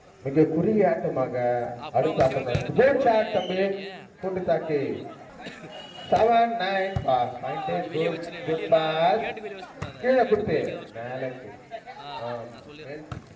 மிக குறுகிய ஆட்டமாக அடுத்த ஆட்டம். குட் ஷாட் தம்பி கூட்டு தாக்கி 7-9 பாஸ். குட் பாஸ் கீழே கொடுத்து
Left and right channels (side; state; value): both; identical; correlation 1.00